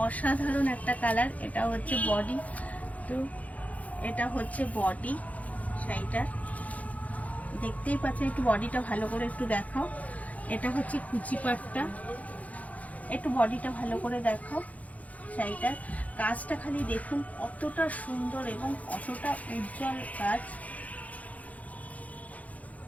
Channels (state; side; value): late; right; 0.071 ms